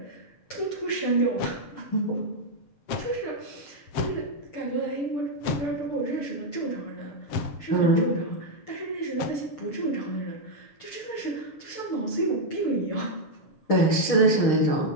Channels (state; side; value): late; right; 6.5 ms